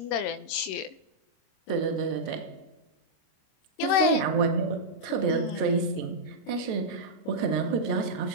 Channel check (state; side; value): late; right; 26 ms